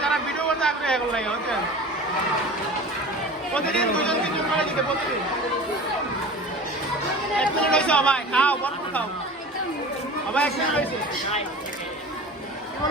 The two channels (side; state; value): both; normal; correlation 0.37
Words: যারা ভিডিও করতে আগ্রহী এগুলো লাগে বুঝছেন। প্রতিদিন 2-3 করে দিতে প্রতিদিন। 1 মিনিট হয়েছে ভাই, খাও বড় খাও ভাই, 1 মিনিট হয়েছে। কি